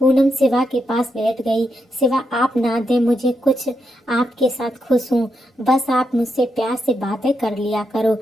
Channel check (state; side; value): normal; both; correlation 0.83